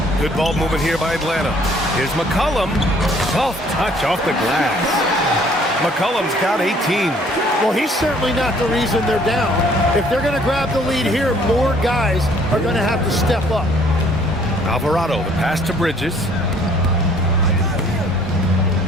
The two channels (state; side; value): normal; both; correlation 0.59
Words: Good ball movement here by Atlanta. Here's McCollum. Soft touch off the glass. McCollum's got 18. Well, he's certainly not the reason they're down. If they're going to grab the lead here, more guys are going to have to step up. Alvarado, the pass to Bridges.